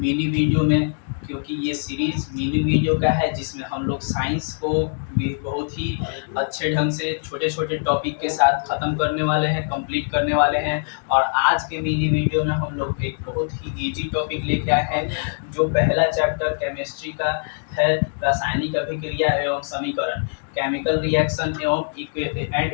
वीडियो में, क्योंकि ये सीरीज मिनी वीडियो का है जिसमें हम लोग साइंस को भी बहुत ही अच्छे ढंग से छोटे छोटे टॉपिक के साथ ख़त्म करने वाले हैं, कंप्लीट करने वाले हैं। और आज के मिनी वीडियो में हम लोग एक बहुत ही इजी टॉपिक लेके आए हैं, जो पहला चैप्टर केमिस्ट्री का है, रासायनिक अभिक्रिया एवं समीकरण, केमिकल रिएक्शन एंड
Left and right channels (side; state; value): right; silent; digital silence